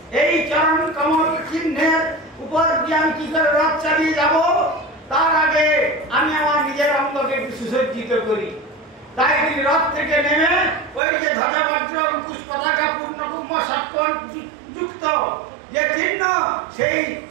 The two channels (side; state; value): left; drops out; at 11.0 s